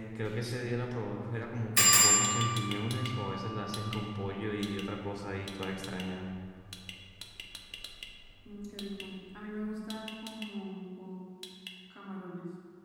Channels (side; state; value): both; identical; correlation 1.00